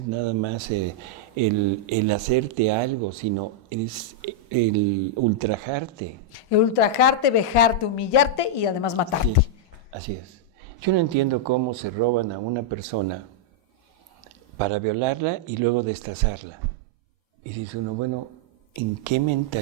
nada más el hacerte algo, sino es el ultrajarte. El ultrajarte, vejarte, humillarte y además matarte. Sí, así es. Yo no entiendo cómo se roban a una persona para violarla y luego destazarla. Y dice uno, bueno, ¿en qué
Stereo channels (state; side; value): normal; both; correlation -0.04